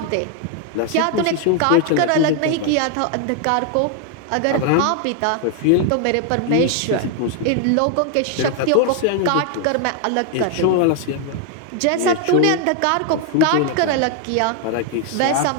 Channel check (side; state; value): both; different; correlation 0.00